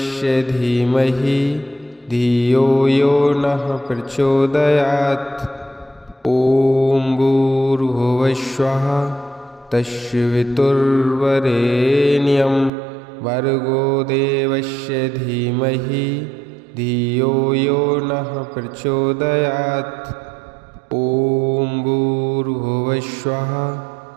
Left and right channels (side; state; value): left; drops out; at 12.7 s